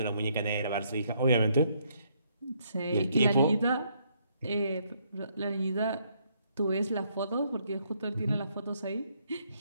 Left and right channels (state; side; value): inverted; both; correlation -0.71